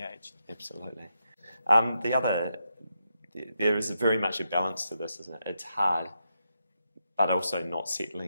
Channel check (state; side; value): inverted; both; correlation -0.84